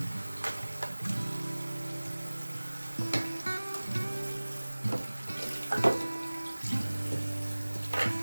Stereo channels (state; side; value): inverted; both; correlation -1.00